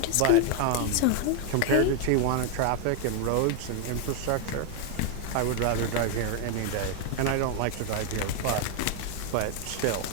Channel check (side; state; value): both; different; correlation 0.00